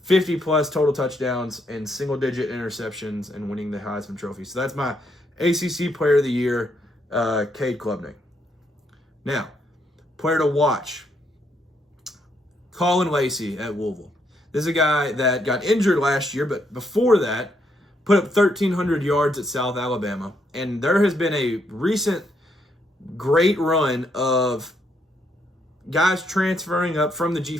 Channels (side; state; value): both; normal; correlation 0.75